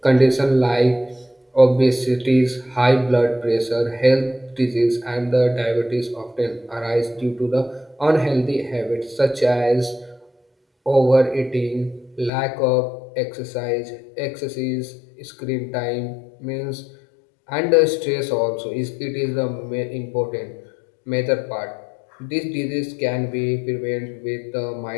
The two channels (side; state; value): right; drops out; at 12.3 s